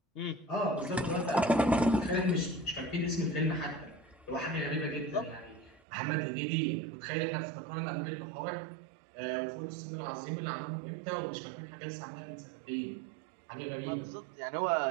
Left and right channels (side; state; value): left; drops out; at 5.8 s